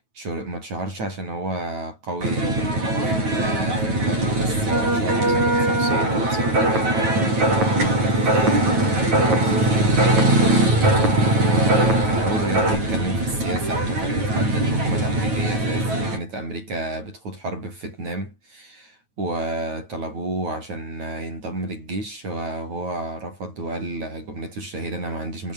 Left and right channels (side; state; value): left; late; 9.2 ms